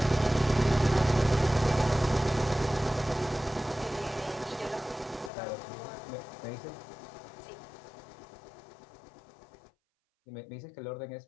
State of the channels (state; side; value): drops out; right; at 5.3 s